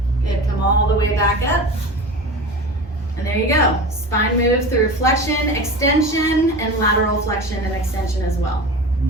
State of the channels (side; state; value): both; normal; correlation 0.32